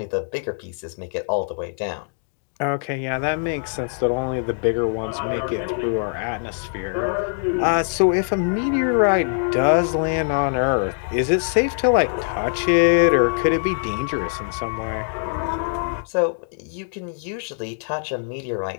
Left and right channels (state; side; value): silent; right; digital silence